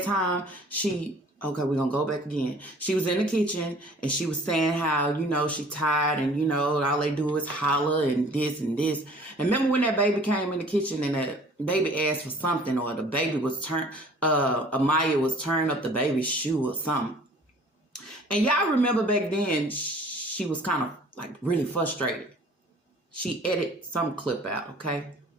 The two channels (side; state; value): both; normal; correlation 0.51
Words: time okay, we're going to go back again. She was in the kitchen and she was saying how, you know, she tired and, you know, all they do is holler and this and this. And remember when that baby came in the kitchen and that baby asked for something, or the baby was Amaya was turning up the baby's shoe or something. And y'all remember back then, she was kind of like really frustrated. She edited some clip out, okay?